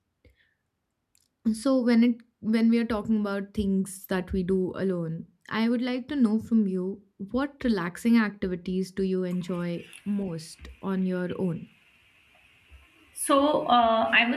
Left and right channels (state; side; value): identical; both; correlation 1.00